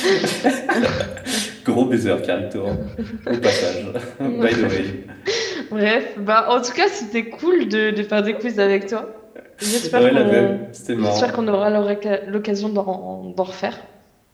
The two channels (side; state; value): both; identical; correlation 1.00